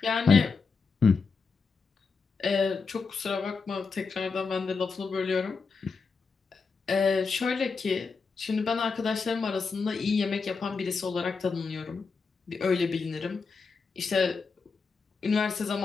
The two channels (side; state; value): right; quieter; 4.9 dB